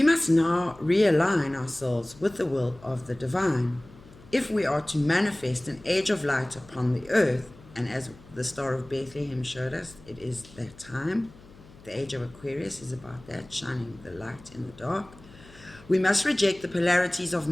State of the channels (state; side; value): noise; left; hum, 22 dB below the sound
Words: must now realign ourselves with the will of the divine if we are to manifest an age of light upon the earth. And as the Star of Bethlehem showed us, it is that time. The age of Aquarius is about that, shining the light in the dark. We must reject the polarities of